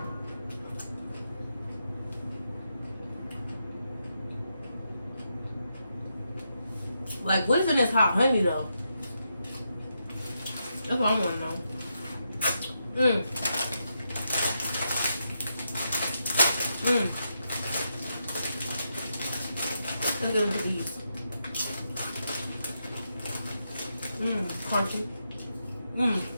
Like, what's in this hot honey, though? That's what I want to know. Let's go with these. Crunchy.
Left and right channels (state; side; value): inverted; both; correlation -0.83